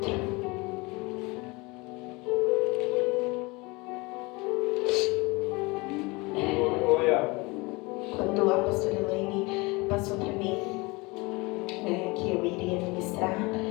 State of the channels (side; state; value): right; quieter; 25.1 dB